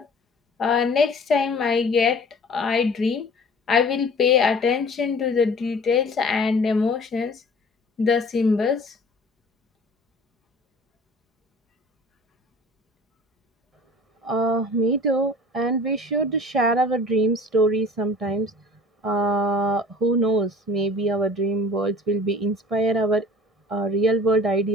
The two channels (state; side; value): normal; both; correlation 0.46